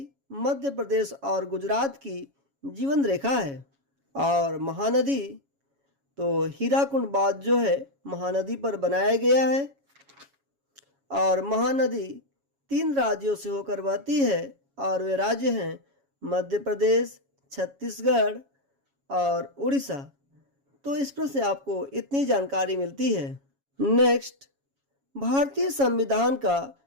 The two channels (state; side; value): late; left; 7.2 ms